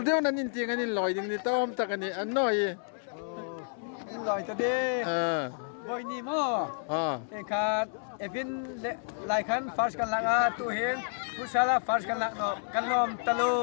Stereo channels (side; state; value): right; silent; 58 dB below the other